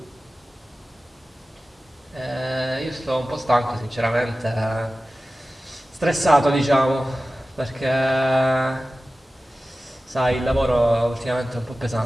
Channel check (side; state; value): both; normal; correlation 0.96